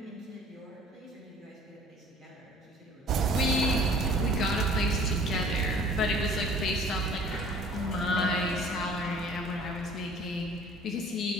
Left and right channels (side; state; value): both; normal; correlation 0.50